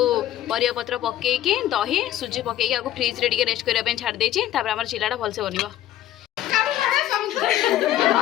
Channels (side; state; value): right; quieter; 12.9 dB